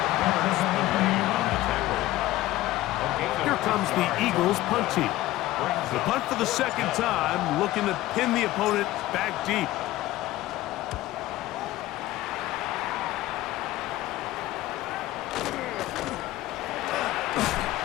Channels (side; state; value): right; quieter; 16.4 dB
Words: tackle. Here comes the Eagles punt team. The punt for the 2nd time, looking to pin the opponent back deep.